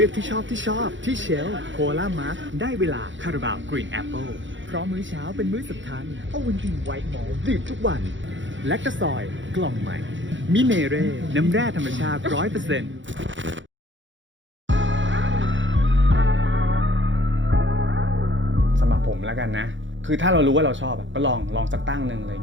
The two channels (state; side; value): late; left; 0.55 ms